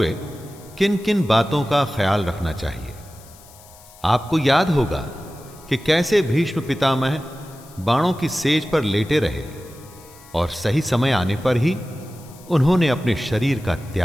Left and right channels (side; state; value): left; noise; hiss, 23 dB below the sound